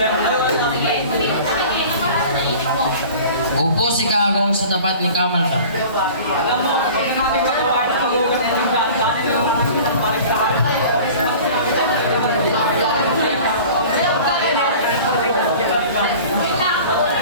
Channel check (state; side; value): inverted; both; correlation -0.42